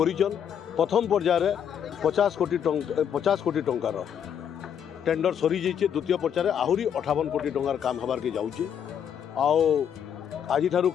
प्रथम पर्यायर 50 कोटी टंकार टेंडर सरी जाइए द्वितीय पर्यायर आहरी 58 कोटी टंकार काम हबार के जाऊे आज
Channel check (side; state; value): right; quieter; 8.5 dB